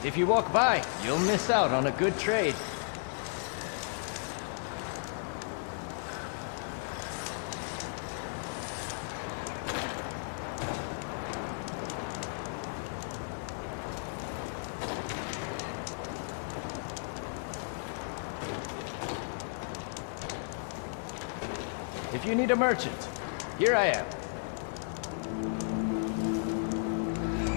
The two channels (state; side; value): silent; right; digital silence